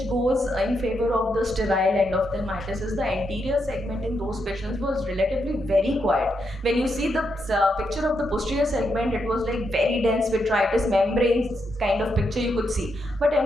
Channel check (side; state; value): both; normal; correlation 0.81